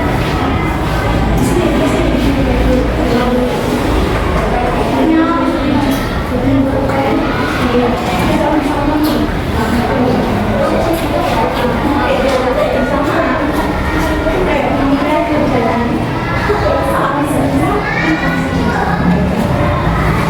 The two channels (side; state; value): both; identical; correlation 1.00